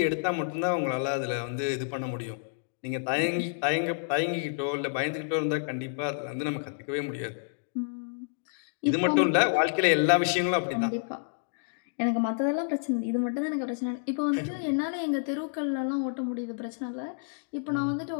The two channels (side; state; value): right; silent; digital silence